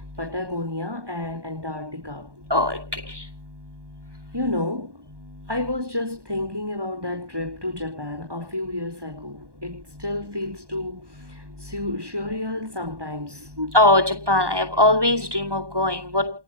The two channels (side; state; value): left; late; 1.2 ms